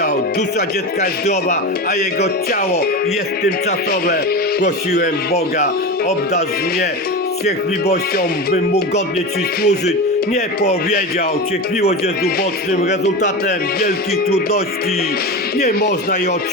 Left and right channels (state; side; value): normal; both; correlation 0.24